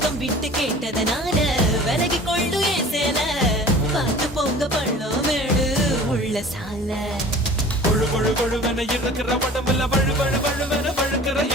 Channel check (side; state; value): both; normal; correlation 0.43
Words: விட்டு கேட்டதனால விலகி கொள்ளு ஏன் சேல பார்த்து போங்க பள்ளம் மேடு உள்ள சால கொழு கொழு கொழுவென இருக்கிற உடம்புல வழு வழு வழுவென வழுக்கிற